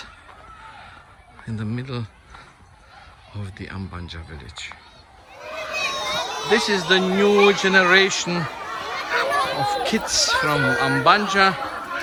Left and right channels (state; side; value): identical; both; correlation 1.00